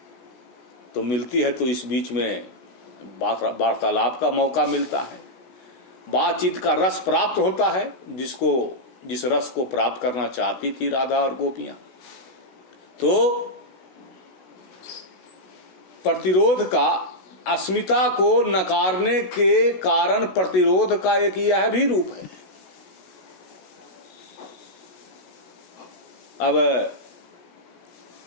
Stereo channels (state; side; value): late; right; 16 ms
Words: तो मिलती है तो इस बीच में वार्तालाप का मौका मिलता है, बातचीत का रस प्राप्त होता है, जिस रस को प्राप्त करना चाहती थी राधा और गोपियां। तो प्रतिरोध का, अस्मिता को नकारने के कारण प्रतिरोध का एक यह भी रूप है। अब